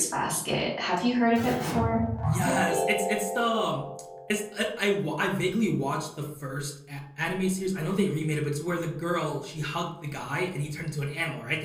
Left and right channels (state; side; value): identical; both; correlation 1.00